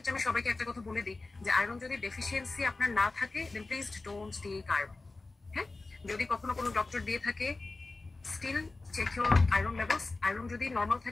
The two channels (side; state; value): right; quieter; 3.4 dB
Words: আমি সবাইকে একটা কথা বলে দিই যে আয়রন যদি ডেফিসিয়েন্সি আপনার না থাকে then please don't take iron. হ্যাঁ, যদি কখনো কোনো ডক্টর দিয়ে থাকে still check your iron levels. Iron যদি নর্মাল